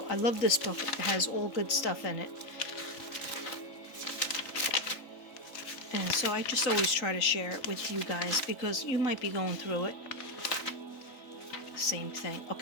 I love this book. It has all good stuff in it. And so I just always try to share it with you guys because you might be going through it. Same thing.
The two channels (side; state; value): right; late; 3.8 ms